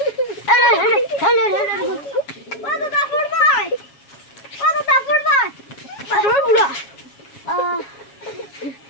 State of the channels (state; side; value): late; right; 7.2 ms